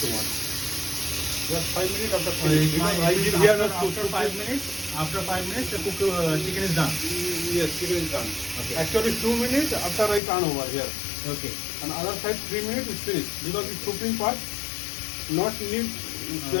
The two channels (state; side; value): drops out; right; at 10.2 s